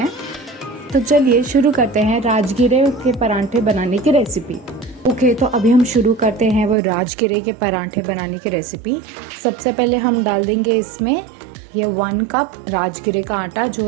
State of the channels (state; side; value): drops out; left; at 6.8 s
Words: तो चलिए शुरू करते हैं राजगिरे के पराठे बनाने की रेसिपी। ओके, तो अभी हम शुरू करते हैं वो राजगिरे के पराठे बनाने की रेसिपी। सबसे पहले हम डाल देंगे इसमें ये 1 कप राजगिरे का आटा जो